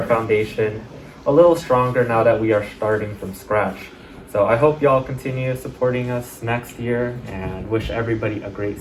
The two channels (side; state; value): both; identical; correlation 1.00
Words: foundation a little stronger now that we are starting from scratch. So I hope y'all continue supporting us next year and wish everybody a great